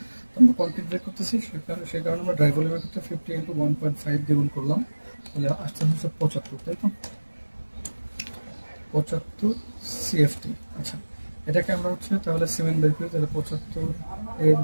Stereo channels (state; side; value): inverted; both; correlation -1.00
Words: তো আমরা কংক্রিট বের করতেছি, সেই কারণে আমরা ড্রাই ভলিউমের ক্ষেত্রে 50 ইন্টু 1.5 দিয়ে গুণ করলাম, তাহলে আসতে হচ্ছে 75, তাই তো? 75 CFT। আচ্ছা, এটাকে আমরা হচ্ছে তাহলে সিমেন্ট বের করি, তাহলে 75 এর